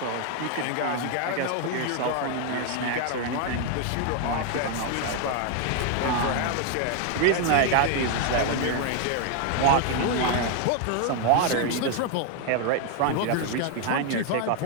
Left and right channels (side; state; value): both; different; correlation 0.00